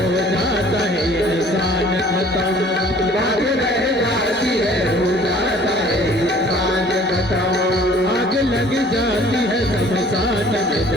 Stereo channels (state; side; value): normal; both; correlation 0.53